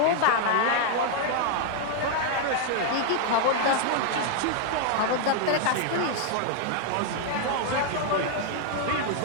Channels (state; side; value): different; both; correlation 0.00